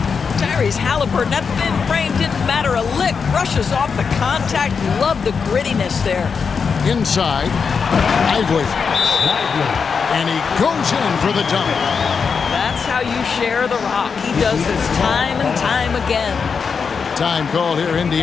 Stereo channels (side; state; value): right; quieter; 5.8 dB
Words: Tyrese Halliburton, that thin frame didn't matter a lick. Brushes off the contact. Love the grittiness there. Inside. Lively. And he goes in for the dunk. That's how you share the rock. He does this time and time again. Time called here.